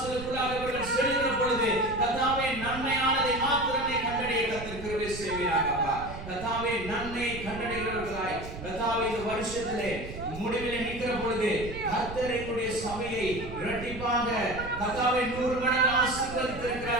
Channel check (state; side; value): noise; right; rumble, 11 dB below the sound